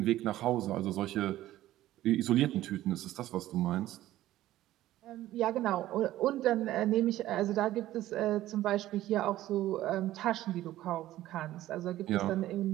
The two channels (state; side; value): quieter; left; 14.6 dB